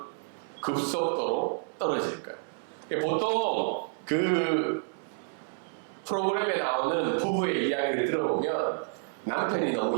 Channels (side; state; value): left; silent; 58 dB below the other